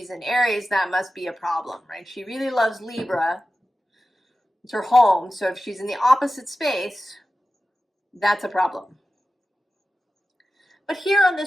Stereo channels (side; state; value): both; normal; correlation 0.94